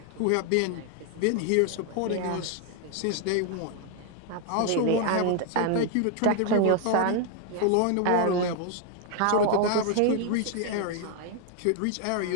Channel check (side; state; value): both; different; correlation 0.00